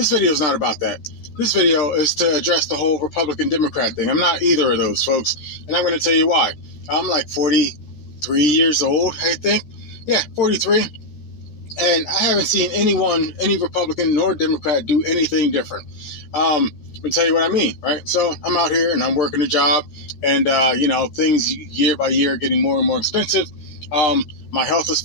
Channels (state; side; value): late; right; 13 ms